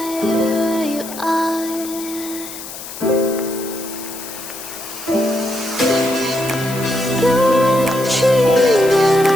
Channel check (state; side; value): noise; left; hiss, 11 dB below the sound